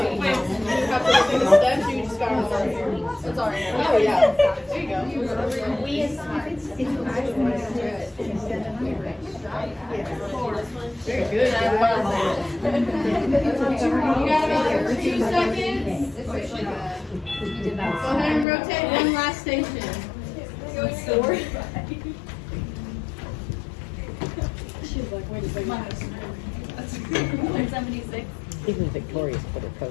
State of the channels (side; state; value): right; drops out; at 18.4 s